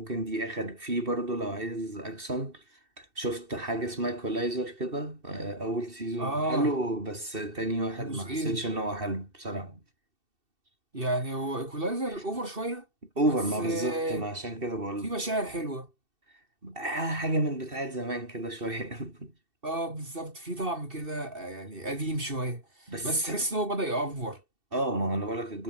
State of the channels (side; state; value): left; late; 2.7 ms